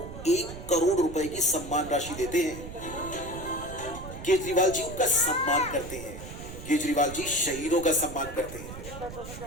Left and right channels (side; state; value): right; noise; rumble, 11 dB below the sound